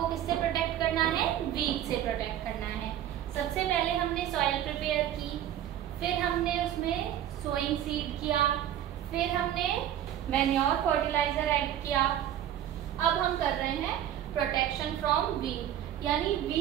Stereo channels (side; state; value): left; quieter; 11.2 dB